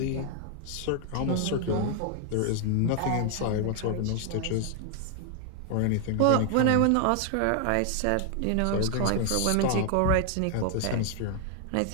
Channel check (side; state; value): both; different; correlation 0.00